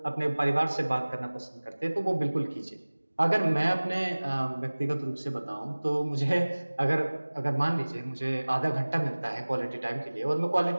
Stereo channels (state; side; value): inverted; both; correlation -1.00